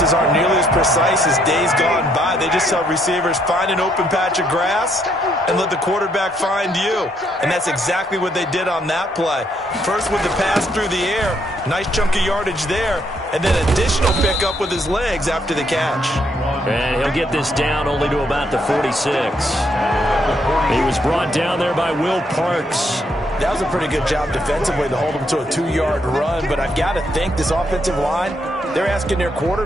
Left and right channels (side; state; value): both; normal; correlation 0.72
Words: aren't nearly as precise as days gone by. They just tell receivers, find an open patch of grass and let the quarterback find you. And that's exactly what they did on that play. First with the pass through the air, nice chunk of yardage there, and then additional pickup with his legs after the catch. And he'll get this down only to about the 46. He was brought down there by Will Parks. That was a pretty good job defensively to hold him to a 2-yard run, but I've got to think this offensive line, they're asking their